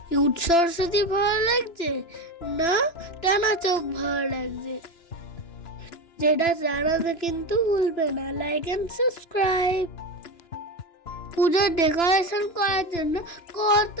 কিউট সরস্বতী ভালো লাগছে না টানা চোখ ভালো লাগছে? যেটা জানাতে কিন্তু ভুলবে না, লাইক এন্ড সাবস্ক্রাইব। পুজোর ডেকোরেশন করার জন্য কত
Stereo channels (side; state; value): right; late; 2.9 ms